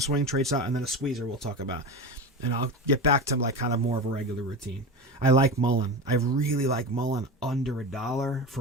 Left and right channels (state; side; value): normal; both; correlation 0.24